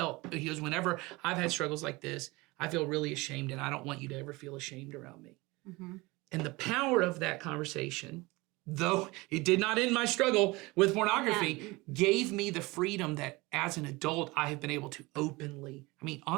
whenever I've had struggles like this, I feel really ashamed, and I don't want you to ever feel ashamed around me. Mm-hmm. And the power of that conversation, though it did not end my struggle with pornography, gave me the freedom that as an adult, I have been able to openly,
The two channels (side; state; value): left; quieter; 22.9 dB